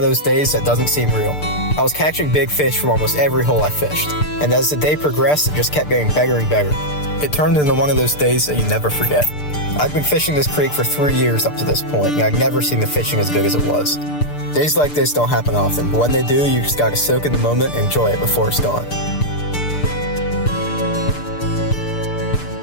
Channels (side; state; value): right; late; 6.7 ms